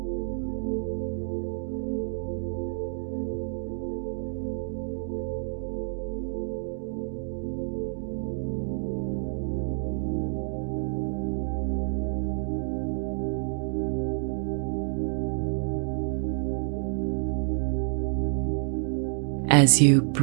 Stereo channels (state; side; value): silent; left; 57 dB below the other